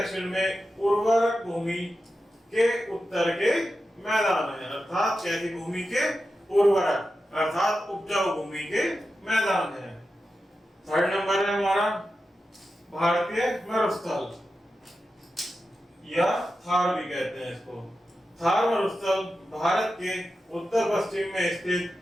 में उर्वरक भूमि के उत्तर के मैदान है, अर्थात कैसी भूमि के? उर्वरक, अर्थात उपजाऊ भूमि के मैदान है। थर्ड नंबर है हमारा भारतीय मरुस्थल, या थार भी कहते हैं इसको। थार मरुस्थल भारत के उत्तर पश्चिम में स्थित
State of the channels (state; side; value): normal; both; correlation 0.91